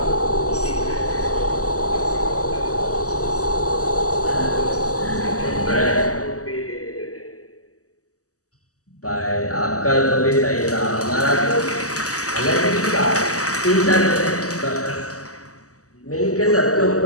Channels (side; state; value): right; late; 0.66 ms